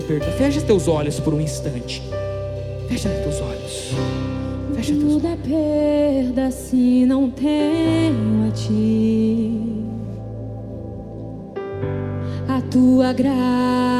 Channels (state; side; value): identical; both; correlation 1.00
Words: Fecha teus olhos por um instante. Fecha teus olhos. Fecha teus olhos. Tudo é perda se não tenho a ti. A tua